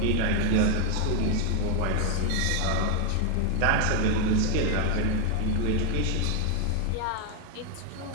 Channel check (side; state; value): both; different; correlation 0.01